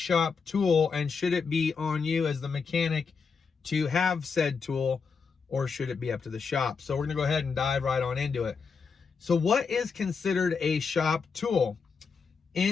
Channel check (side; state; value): right; quieter; 5.4 dB